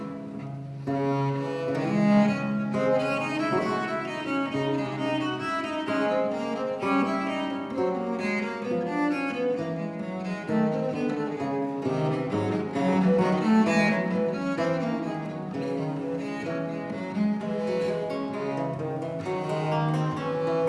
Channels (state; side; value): identical; both; correlation 1.00